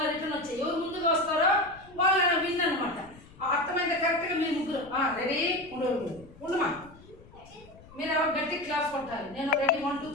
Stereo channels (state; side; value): noise; left; rumble, 22 dB below the sound